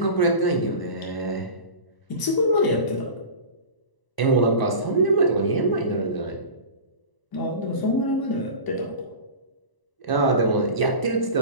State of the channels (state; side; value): late; right; 1.0 ms